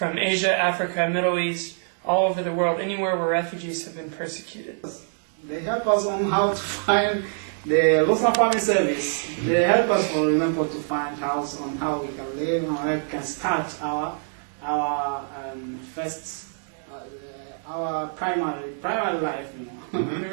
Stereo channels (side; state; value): left; silent; 62 dB below the other